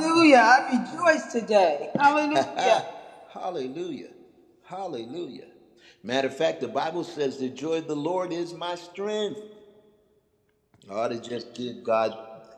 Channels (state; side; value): identical; both; correlation 1.00